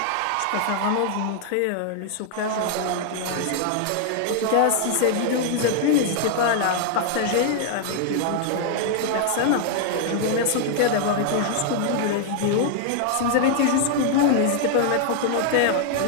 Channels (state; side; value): different; both; correlation 0.00